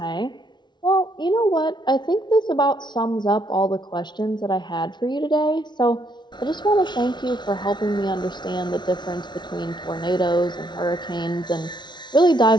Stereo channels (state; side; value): late; right; 0.21 ms